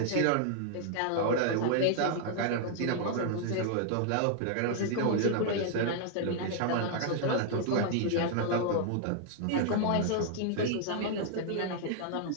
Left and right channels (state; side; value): different; both; correlation 0.00